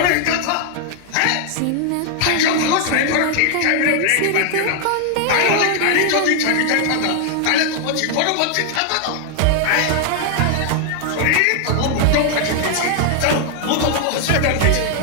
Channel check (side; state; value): both; different; correlation 0.00